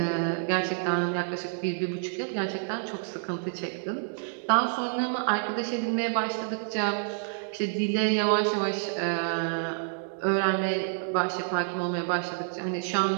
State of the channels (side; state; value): left; silent; digital silence